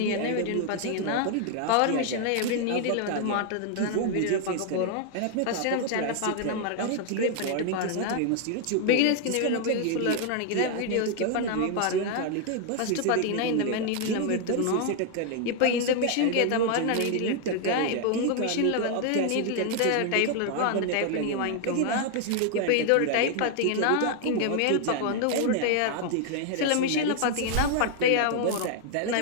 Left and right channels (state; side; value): different; both; correlation 0.00